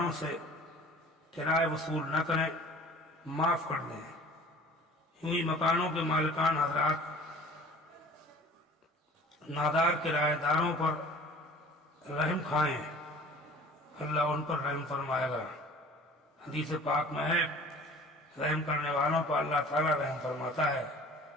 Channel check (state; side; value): normal; both; correlation 0.46